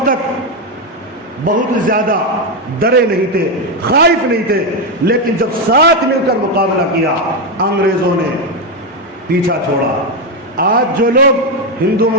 تک بہت زیادہ ڈرے نہیں تھے, خائف نہیں تھے, لیکن جب ساتھ مل کر مقابلہ کیا انگریزوں نے پیچھا چھوڑا. آج جو لوگ ہندو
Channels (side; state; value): both; normal; correlation 0.07